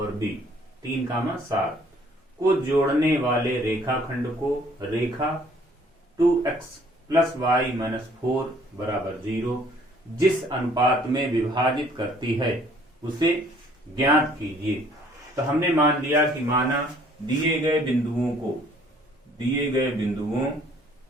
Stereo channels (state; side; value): normal; both; correlation 0.59